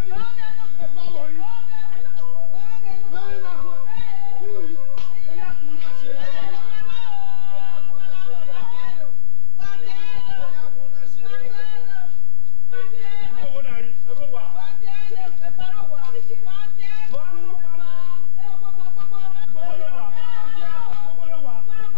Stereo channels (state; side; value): silent; right; digital silence